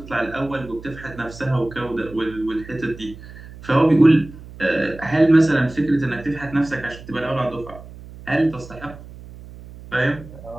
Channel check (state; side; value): noise; right; hum, 17 dB below the sound